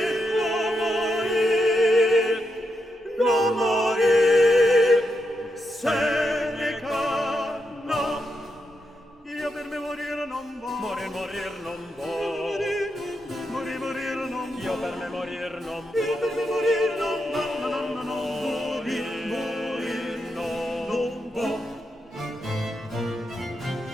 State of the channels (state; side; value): normal; both; correlation 0.84